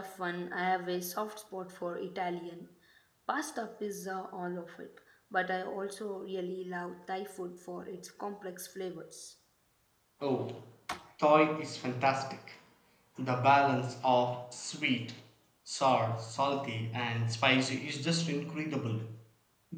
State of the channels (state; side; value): identical; both; correlation 1.00